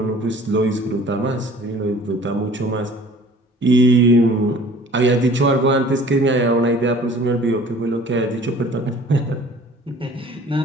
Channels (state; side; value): normal; both; correlation 0.48